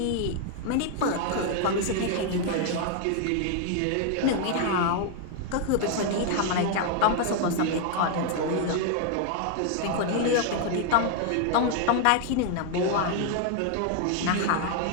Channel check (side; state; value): both; different; correlation 0.00